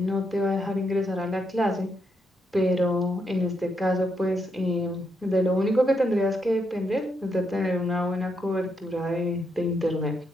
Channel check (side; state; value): both; normal; correlation 0.80